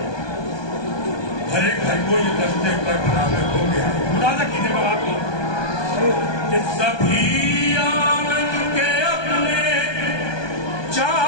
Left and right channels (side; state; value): right; late; 1.2 ms